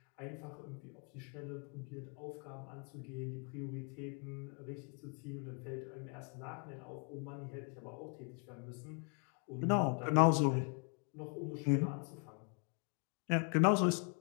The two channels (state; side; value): quieter; right; 39.3 dB